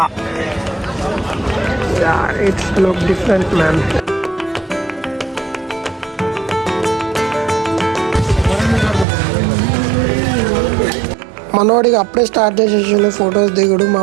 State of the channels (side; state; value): left; drops out; at 9.1 s